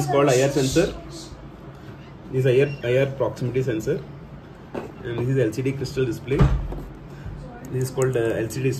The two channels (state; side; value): identical; both; correlation 1.00